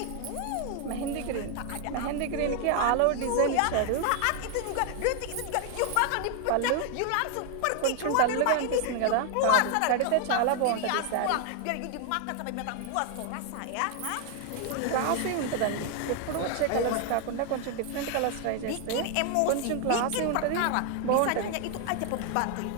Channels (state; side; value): different; both; correlation 0.00